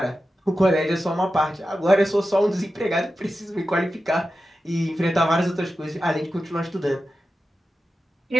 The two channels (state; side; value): normal; both; correlation 0.92